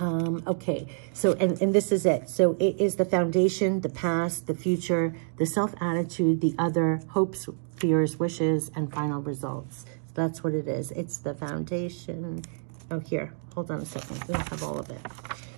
Okay, so, and this is it. So it is the foundation, the past, the future, the self-attitude, the other, hopes, fears, wishes, and final results. So that's what it is. It's the foundation, Oh, here. Hold on a second. We don't have all of it.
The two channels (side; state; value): left; silent; digital silence